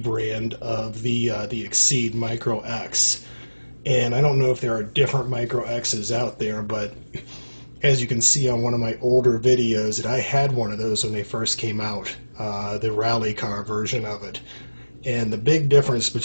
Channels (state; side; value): inverted; both; correlation -1.00